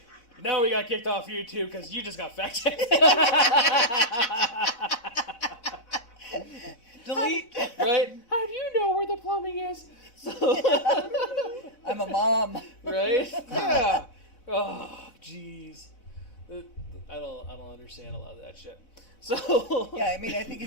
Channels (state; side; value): late; right; 3.6 ms